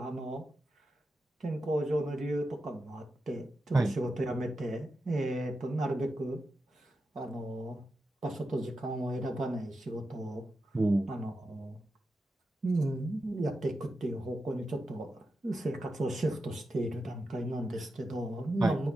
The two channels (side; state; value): both; normal; correlation 0.89